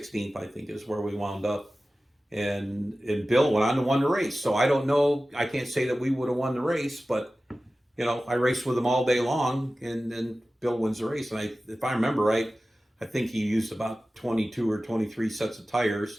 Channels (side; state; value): both; normal; correlation 0.96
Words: I think is where we wound up. And Bill went on to win the race. So I don't know, I can't say that we would have won the race, but, I raced with him all day long, and then Bill wins the race. And if I remember right, I think he used about 22 or 23 sets of